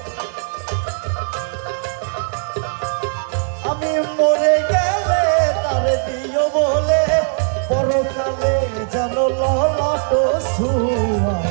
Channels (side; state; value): left; silent; digital silence